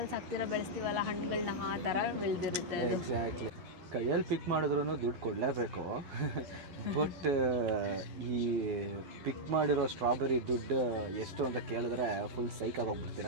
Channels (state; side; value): late; left; 11 ms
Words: ಹಾಕ್ತಿರ ಬೆಳೆಸ್ತೀವಲ್ಲ ಹಣ್ಣುಗಳನ್ನ, ಆ ಥರ ಬೆಳೆದಿರುತ್ತೆ. ಎಕ್ಸಾಕ್ಟ್ಲಿ. ಕೈಯಲ್ಲಿ ಪಿಕ್ ಮಾಡಿದ್ರೂ ದುಡ್ಡು ಕೊಡಲೇಬೇಕು. ಬಟ್ ಈ ಪಿಕ್ ಮಾಡಿರೋ ಸ್ಟ್ರಾಬೆರಿ ದುಡ್ಡು ಎಷ್ಟು ಅಂತ ಕೇಳಿದ್ರೆ ಫುಲ್ ಸೈಕಾಗಿ